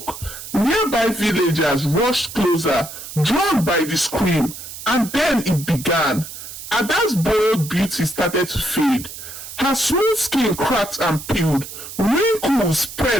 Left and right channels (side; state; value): right; noise; hiss, 12 dB below the sound